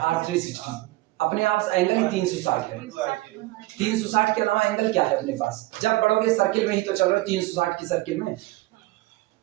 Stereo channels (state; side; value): quieter; left; 19.3 dB